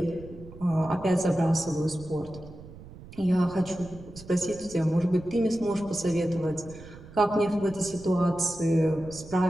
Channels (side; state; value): right; noise; rumble, 17 dB below the sound